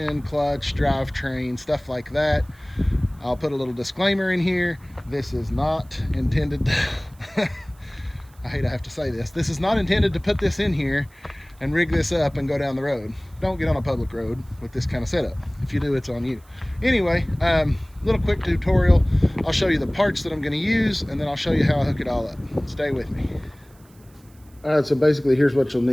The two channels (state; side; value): noise; right; hiss, 30 dB below the sound